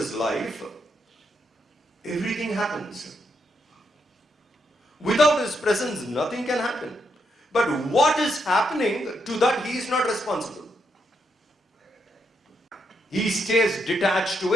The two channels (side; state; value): both; normal; correlation 0.80